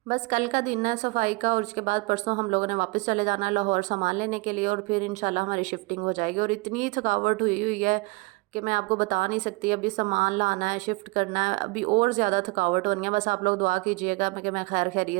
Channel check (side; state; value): left; quieter; 25.8 dB